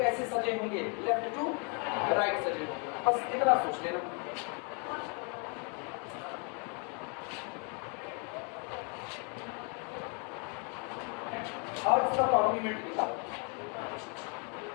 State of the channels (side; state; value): right; quieter; 36.4 dB